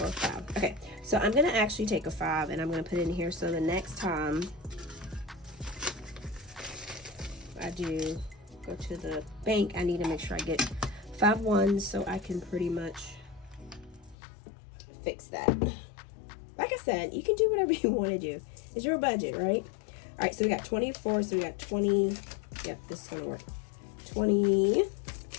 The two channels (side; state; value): right; drops out; at 14.2 s